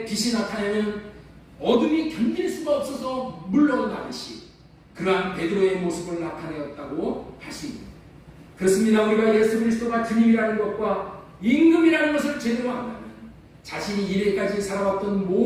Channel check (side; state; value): both; identical; correlation 1.00